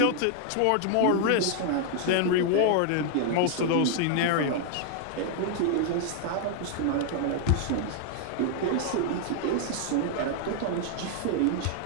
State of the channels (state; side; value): different; both; correlation 0.00